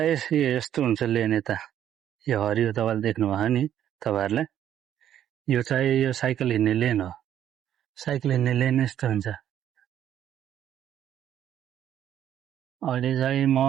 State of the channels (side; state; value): left; quieter; 10.6 dB